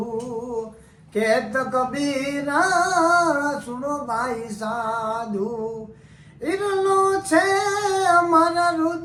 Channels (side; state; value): both; identical; correlation 1.00